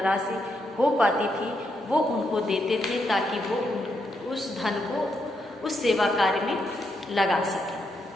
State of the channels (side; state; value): both; normal; correlation 0.80